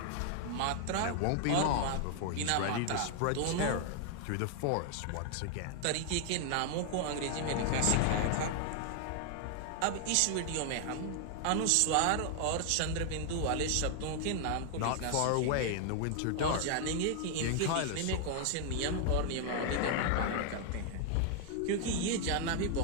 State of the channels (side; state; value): both; different; correlation 0.00